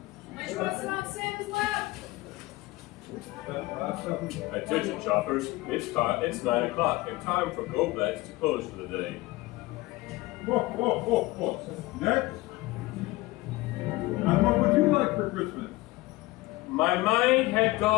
Which one's not Santa's lap? Attention shoppers, it's 9 o'clock and time for Goblad's to close for the day. Ho, ho, ho, ho! Next. And what would you like for Christmas? My mind had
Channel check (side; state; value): right; quieter; 19.9 dB